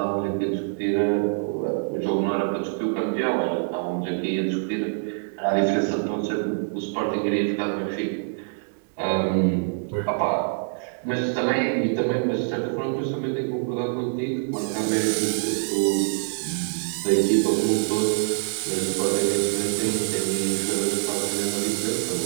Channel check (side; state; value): left; silent; digital silence